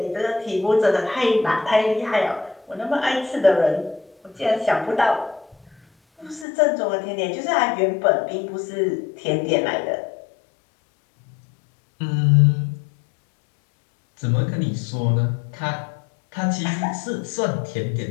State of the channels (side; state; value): right; drops out; at 6.5 s